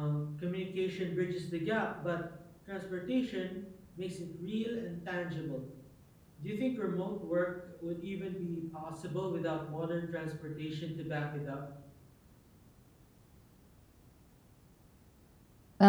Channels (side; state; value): both; identical; correlation 1.00